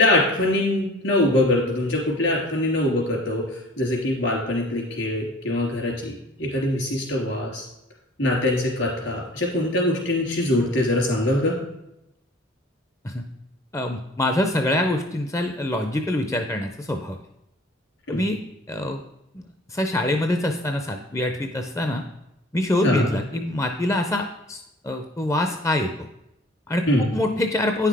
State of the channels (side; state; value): both; normal; correlation 0.48